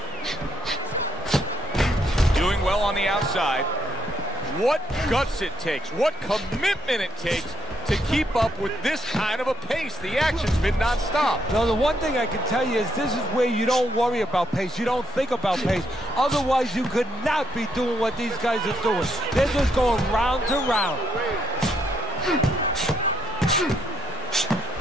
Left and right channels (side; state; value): both; normal; correlation 0.73